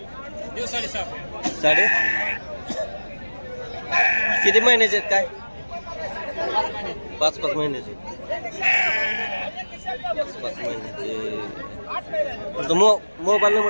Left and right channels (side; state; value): both; inverted; correlation -1.00